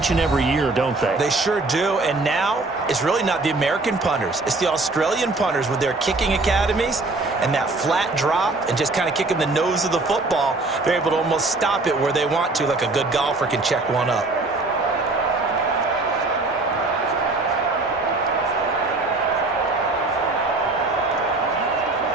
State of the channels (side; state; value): left; quieter; 3.3 dB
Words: and every year, don't they? They sure do. And now it's really not the American punters. It's the Australian punters with their kicking academies and that flat drop and just kind of kicking the nose of the football. They're able to almost stop it where they want to, like a good golfer can check one up.